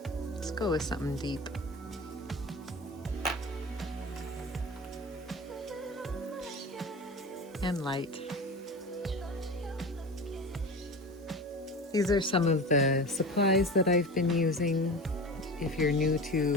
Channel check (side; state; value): both; normal; correlation 0.31